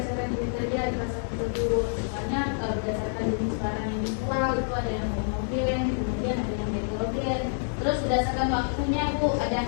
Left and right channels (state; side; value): silent; right; digital silence